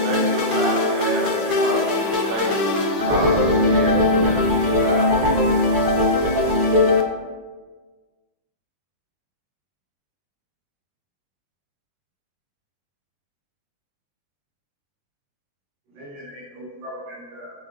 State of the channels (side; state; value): left; late; 21 ms